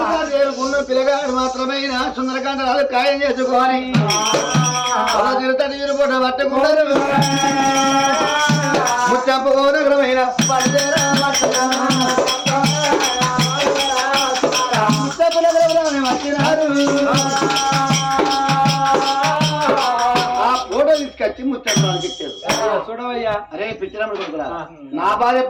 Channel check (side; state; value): both; identical; correlation 1.00